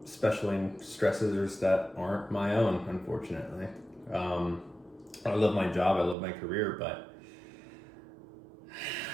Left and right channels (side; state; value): left; drops out; at 6.2 s